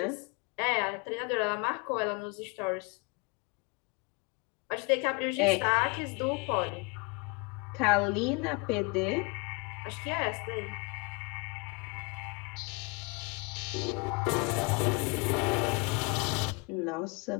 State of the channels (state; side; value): quieter; right; 29.4 dB